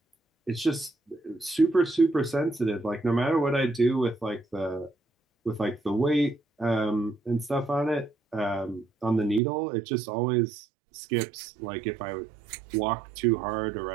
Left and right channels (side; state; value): left; drops out; at 9.4 s